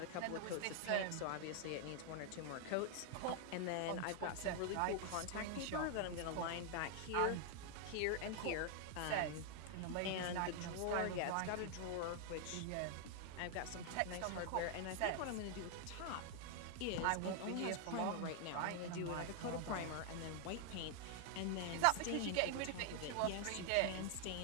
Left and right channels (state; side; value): different; both; correlation 0.00